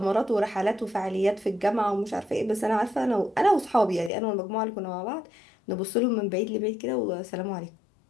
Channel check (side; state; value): right; drops out; at 4.1 s